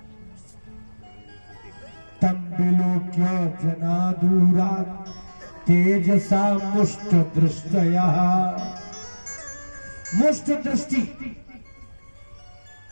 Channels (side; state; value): both; inverted; correlation -1.00